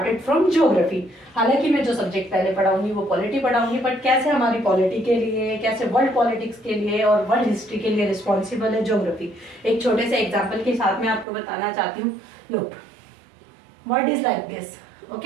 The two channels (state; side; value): drops out; left; at 11.2 s